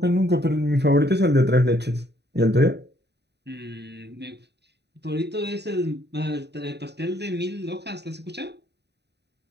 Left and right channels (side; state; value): left; late; 0.49 ms